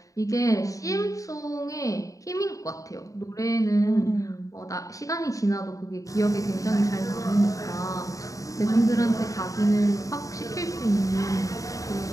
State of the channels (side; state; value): right; late; 0.16 ms